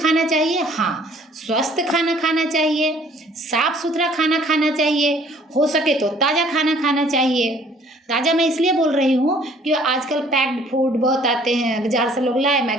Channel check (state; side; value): normal; both; correlation 0.57